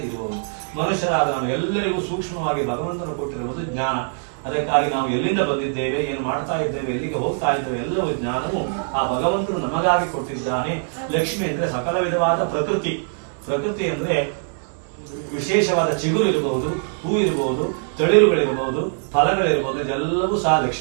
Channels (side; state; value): left; silent; 63 dB below the other